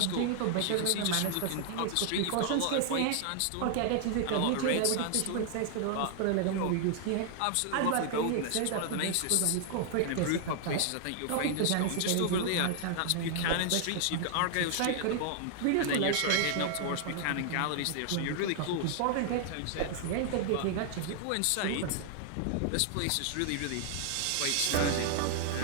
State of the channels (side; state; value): both; different; correlation 0.00